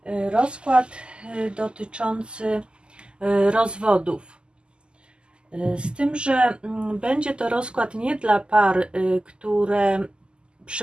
rozkład dotyczący rozwodów. Z tym, że będzie to rozkład nie dla par, które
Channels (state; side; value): late; left; 0.049 ms